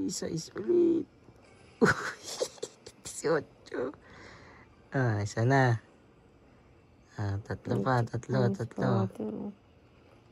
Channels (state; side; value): identical; both; correlation 1.00